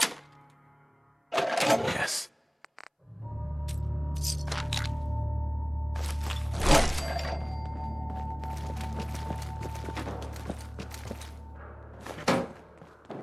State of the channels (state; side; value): identical; both; correlation 1.00